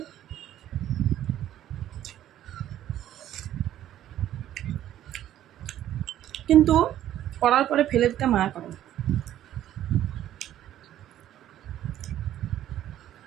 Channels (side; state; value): left; quieter; 12.1 dB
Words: কিন্তু করার পরে ফেলে দিতে মায়া করে,